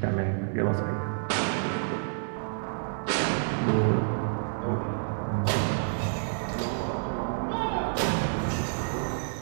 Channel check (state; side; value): silent; left; digital silence